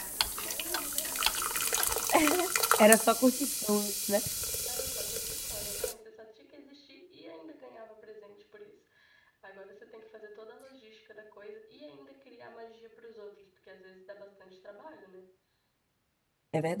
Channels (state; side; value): identical; both; correlation 1.00